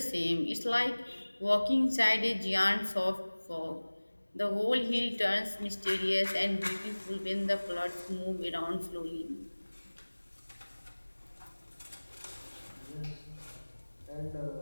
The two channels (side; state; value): both; inverted; correlation -1.00